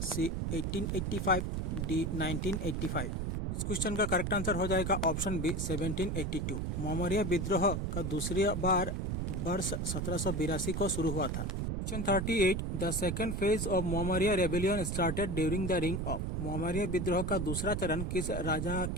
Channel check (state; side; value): noise; right; rumble, 1 dB below the sound